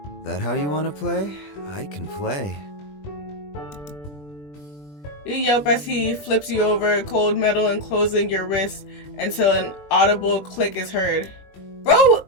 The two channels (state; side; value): late; right; 20 ms